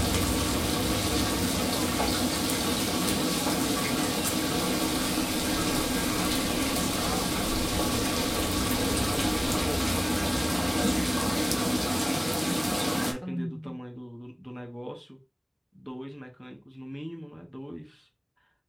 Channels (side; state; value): both; identical; correlation 1.00